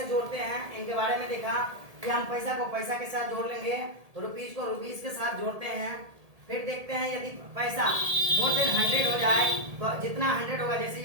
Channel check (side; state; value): left; late; 1.8 ms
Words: जोड़ते हैं इनके बारे में देखा कि हम पैसा को पैसा के साथ जोड़ लेंगे, रुपीज को रुपीज के साथ जोड़ते हैं। फिर देखते हैं यदि पैसा मोर देन 100 हो जाए तो जितना 100 होगा, जैसे